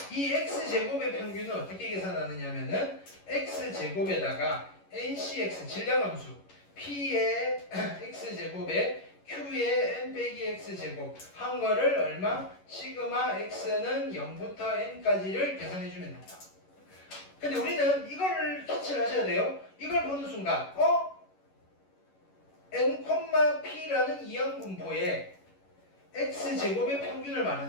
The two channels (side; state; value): right; late; 11 ms